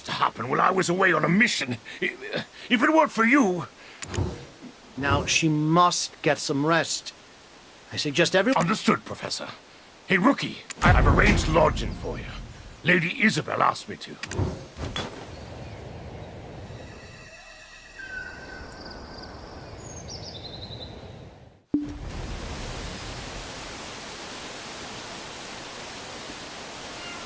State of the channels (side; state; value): both; identical; correlation 1.00